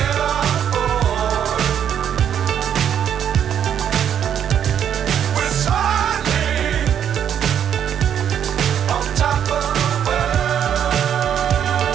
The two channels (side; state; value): left; quieter; 9.1 dB